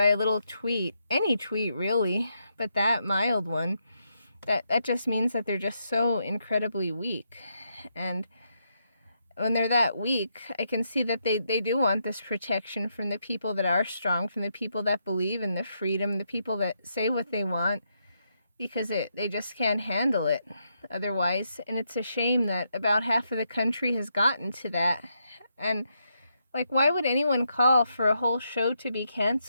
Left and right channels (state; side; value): inverted; both; correlation -0.80